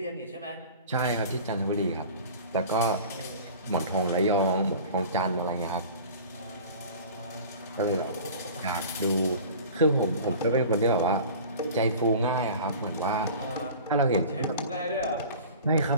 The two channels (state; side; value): inverted; both; correlation -0.40